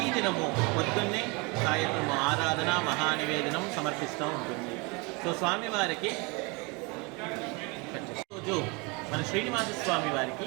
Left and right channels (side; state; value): left; quieter; 29.0 dB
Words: పొద్దున్నే సాయంత్రం ఆరాధన మహానివేదనం సమర్పిస్తూ ఉంటుంది. సో స్వామివారికి రోజు మన శ్రీనివాస స్వామి వారికి